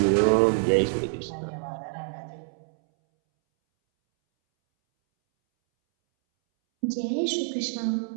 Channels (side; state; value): left; silent; 61 dB below the other